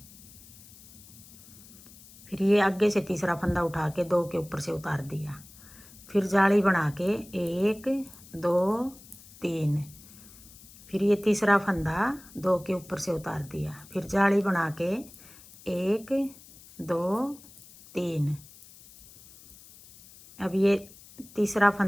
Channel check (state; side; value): noise; left; hiss, 21 dB below the sound